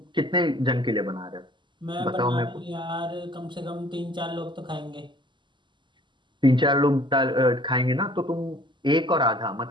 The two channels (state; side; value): late; left; 0.23 ms